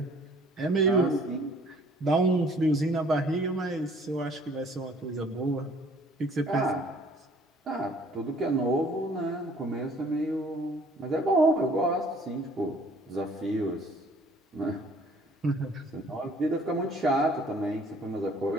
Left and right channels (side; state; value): both; normal; correlation 0.56